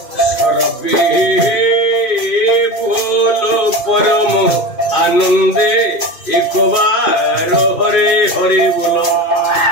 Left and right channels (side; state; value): right; late; 2.5 ms